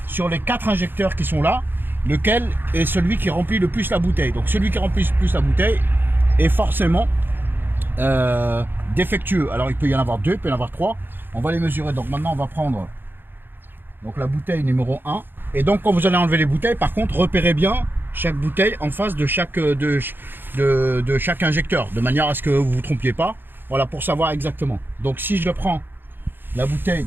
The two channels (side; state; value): left; late; 0.098 ms